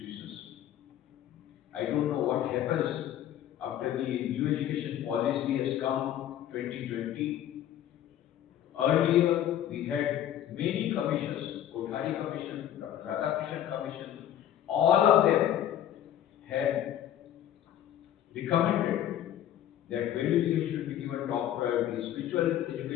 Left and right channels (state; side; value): quieter; right; 11.3 dB